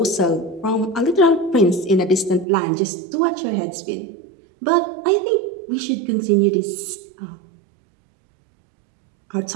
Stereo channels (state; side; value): drops out; left; at 2.5 s